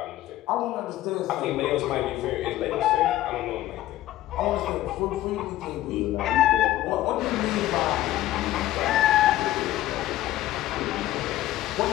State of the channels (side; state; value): right; quieter; 14.7 dB